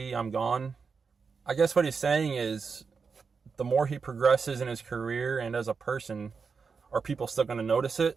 I'm gone." I guess what he's saying is, the more he progresses in his career and as a person, are people still going to notice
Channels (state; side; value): quieter; left; 5.3 dB